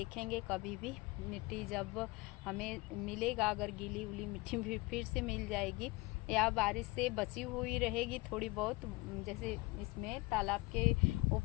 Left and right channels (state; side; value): quieter; right; 23.2 dB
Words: कभी भी मिट्टी जब हमें मिलेगा, अगर गीली उली मिट्टी भी फिर से मिल जाएगी या बारिश से बची हुई रहेगी थोड़ी बहुत, जैसे इसमें तालाब के